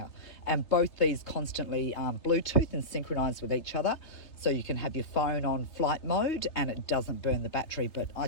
And both these constantly Bluetooth and synchronize with each other. So you can have your phone on flight mode and it doesn't burn the battery, but I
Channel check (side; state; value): right; late; 3.4 ms